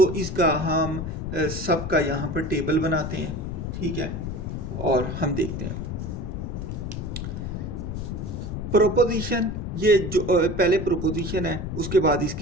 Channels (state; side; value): noise; left; rumble, 5 dB below the sound